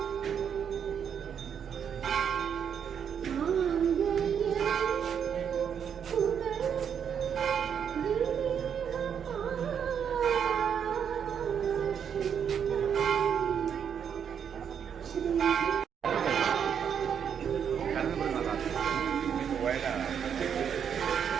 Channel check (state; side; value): quieter; left; 7.9 dB